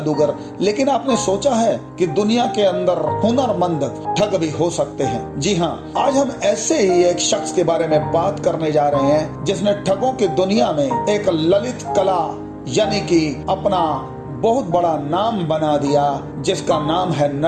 लेकिन आपने सोचा है कि दुनिया के अंदर हुनरमंद ठग भी हो सकते हैं? जी हाँ, आज हम ऐसे ही एक शख्स के बारे में बात करने जा रहे हैं जिसने ठगों की दुनिया में एक ललित कला यानी कि अपना बहुत बड़ा नाम बना दिया, जिसका नाम है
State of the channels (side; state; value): both; identical; correlation 1.00